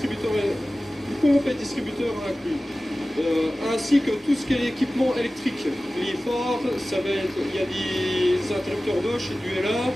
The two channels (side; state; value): both; normal; correlation 0.96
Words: les pompes et distributeurs inclus. Ainsi que tout ce qui est équipement électrique, les phares, il y a des interrupteurs Bosch et du LA,